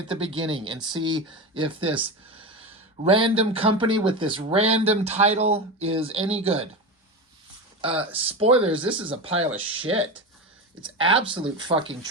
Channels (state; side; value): normal; both; correlation 0.21